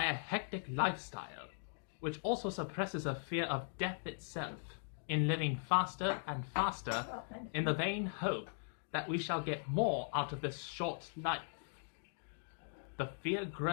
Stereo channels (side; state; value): right; silent; digital silence